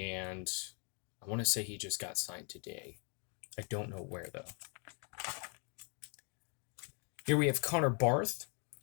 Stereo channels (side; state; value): right; quieter; 37.9 dB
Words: I want to say he just got signed today. I don't know where, though. Here we have Connor Barth.